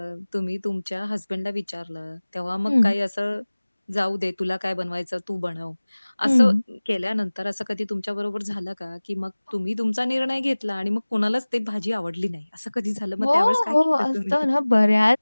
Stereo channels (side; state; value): both; inverted; correlation -1.00